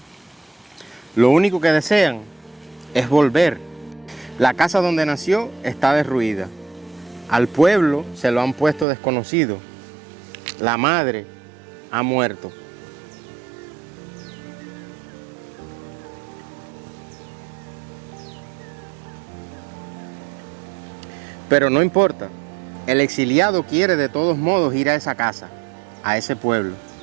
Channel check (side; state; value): left; drops out; at 8.8 s